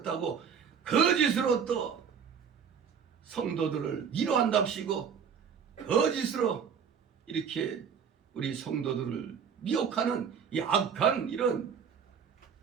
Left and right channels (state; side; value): quieter; left; 7.0 dB